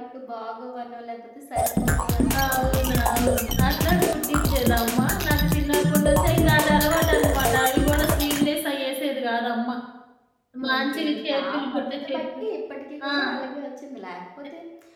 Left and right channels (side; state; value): both; identical; correlation 1.00